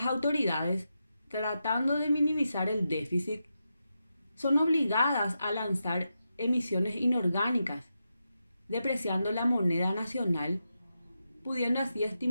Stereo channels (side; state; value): both; inverted; correlation -0.87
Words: autoridades, tratando de minimizar el déficit, son obligadas a lanzar emisiones inorgánicas, depreciando la moneda nacional, pudiendo así